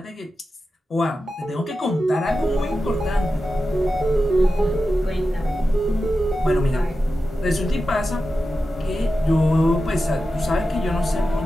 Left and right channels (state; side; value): normal; both; correlation 0.92